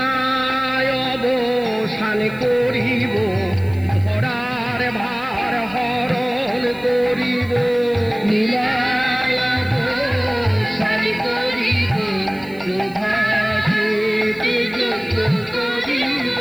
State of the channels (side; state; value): right; noise; hiss, 26 dB below the sound